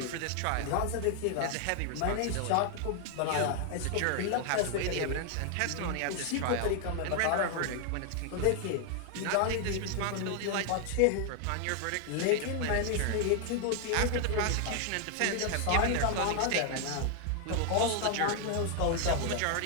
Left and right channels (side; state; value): both; different; correlation 0.00